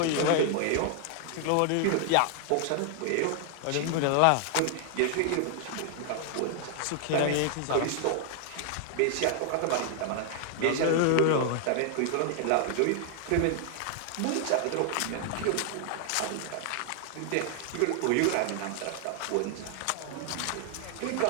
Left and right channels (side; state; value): both; different; correlation 0.00